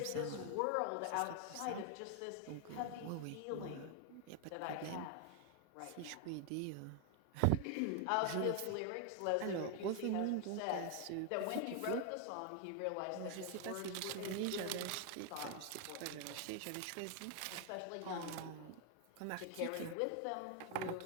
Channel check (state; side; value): different; both; correlation 0.00